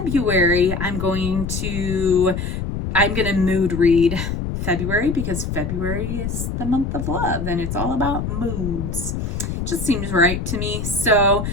I'm going to mood read February because February is the month of love and it's all about moods. Just seems right to me. So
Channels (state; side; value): noise; left; rumble, 4 dB below the sound